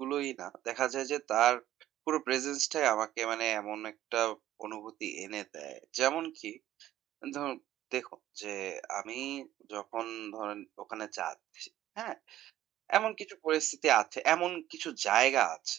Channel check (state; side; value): quieter; left; 13.3 dB